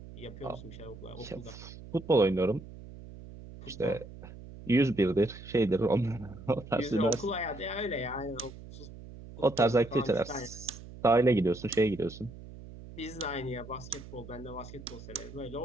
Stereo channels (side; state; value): right; noise; hum, 15 dB below the sound